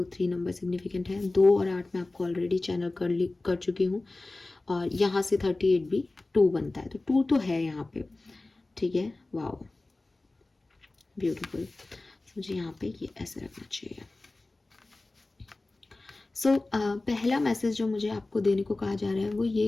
3 नंबर सिग्निफिकेंट है। 2 और 8 मैं आपको ऑलरेडी चैनल कर चुकी हूँ, और यहाँ से 38 भी 2 बनता है, तो 2 तो है यहाँ पे। ठीक है, वाओ, ब्यूटीफुल। मुझे यहाँ पे ये ऐसे रखना चाहिए। पहला मैसेज जो मुझे आपको देने को कहा जा रहा है वो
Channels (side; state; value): right; quieter; 3.1 dB